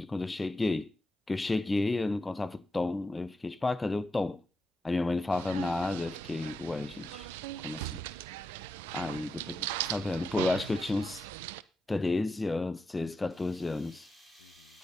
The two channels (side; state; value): both; normal; correlation 0.87